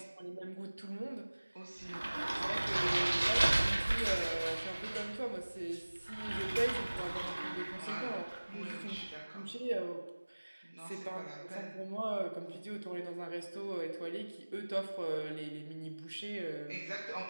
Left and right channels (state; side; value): inverted; both; correlation -1.00